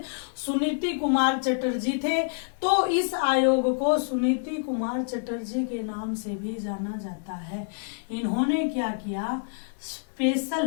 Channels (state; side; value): silent; right; digital silence